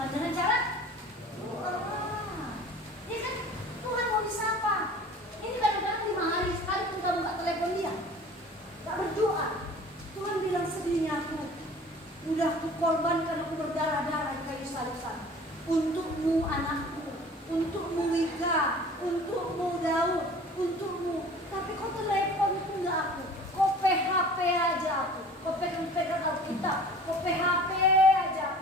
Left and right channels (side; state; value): both; normal; correlation 0.45